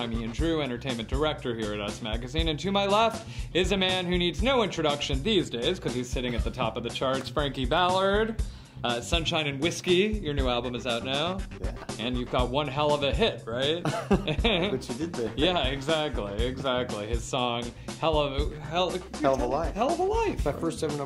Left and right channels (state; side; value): identical; both; correlation 1.00